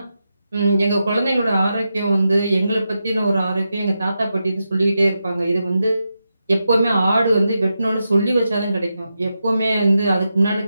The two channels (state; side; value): inverted; both; correlation -0.88